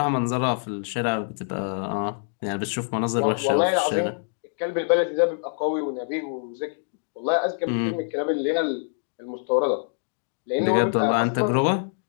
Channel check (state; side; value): silent; right; digital silence